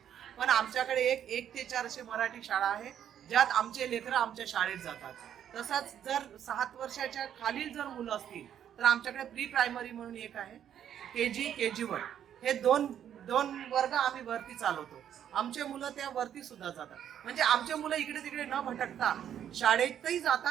पण आमच्याकडे 1 ते 4 असे मराठी शाळा आहे ज्यात आमचे लेकर आमच्या शाळेत जातात. तसंच जर 7 वर्षाच्या खालील जर मुलं असतील तर आमच्याकडे प्री प्रायमरी म्हणून एक आहे, KG1 हे दोन वर्ग आम्ही वरती चालवतो. आमचे मुलं त्या वरती सुद्धा जातात. म्हणजे आमचे मुलं इकडे तिकडे न भटकता शाळेतही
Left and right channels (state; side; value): quieter; left; 9.7 dB